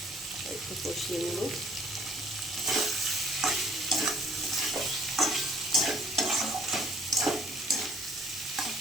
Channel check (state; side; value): normal; both; correlation 0.60